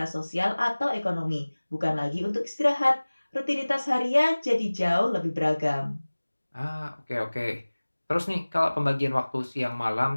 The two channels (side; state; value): both; inverted; correlation -1.00